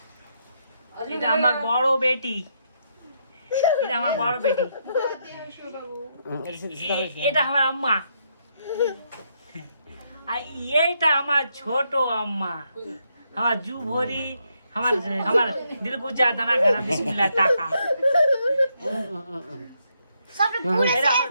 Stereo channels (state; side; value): inverted; both; correlation -0.77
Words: এটা আমার বড় বেটি এটা আমার বড় বেটি এটা আমার আম্মা আর এইটা আমার ছোট আম্মা আমার জু ভরি আমার দিল কো যা দানা খানা বিসমিল্লাহ টাকা সবটা পুরো এটা আমার